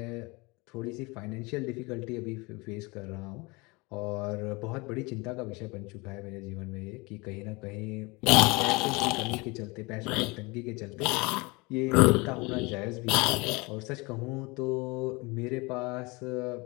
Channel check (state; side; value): quieter; right; 25.8 dB